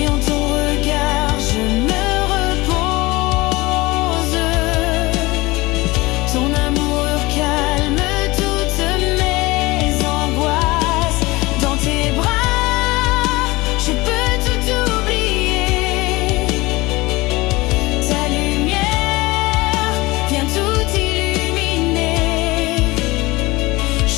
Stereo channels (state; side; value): quieter; right; 21.7 dB